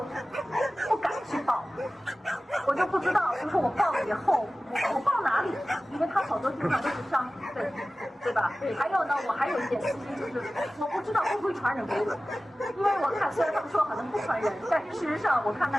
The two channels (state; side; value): normal; both; correlation 0.97